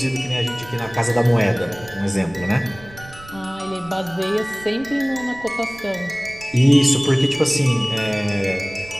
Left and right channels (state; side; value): noise; right; rumble, 20 dB below the sound